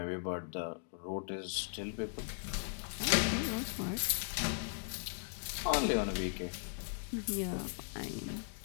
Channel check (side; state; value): right; silent; digital silence